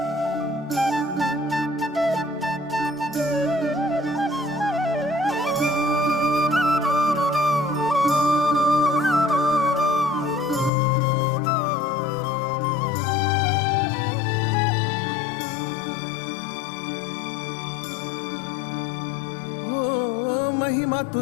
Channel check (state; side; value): drops out; right; at 10.7 s